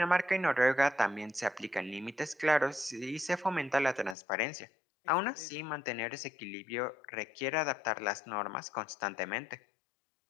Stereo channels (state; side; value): drops out; right; at 4.2 s